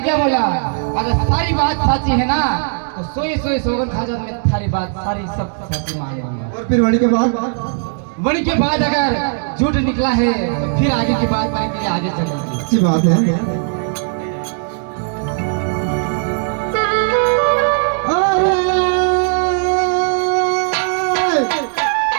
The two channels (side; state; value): left; silent; 66 dB below the other